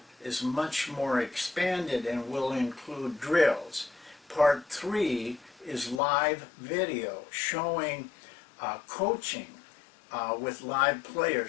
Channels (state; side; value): drops out; right; at 6.0 s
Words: is much more expanded and will include drills. Part three is live video showing coaching with live